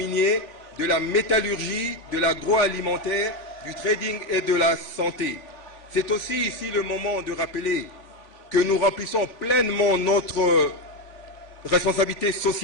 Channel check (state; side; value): late; right; 3.5 ms